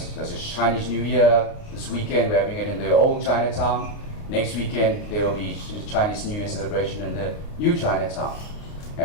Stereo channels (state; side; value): late; right; 29 ms